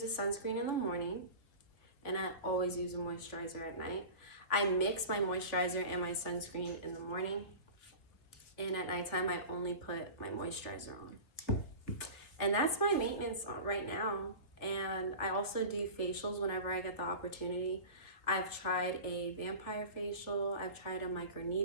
a sunscreen in the morning. And I always use a moisturizer at night. I mix my moisturizer and my sunscreen in the morning. And at nighttime, I only put my moisturizer on. And that's my maintenance right now. And I also do facials whenever I get the opportunity. I've tried a vampire facial. I've tried a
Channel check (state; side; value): late; right; 3.5 ms